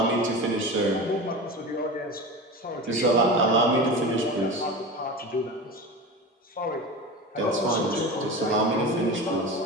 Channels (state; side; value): normal; both; correlation 0.29